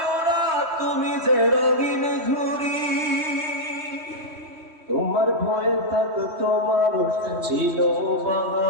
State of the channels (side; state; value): left; late; 3.2 ms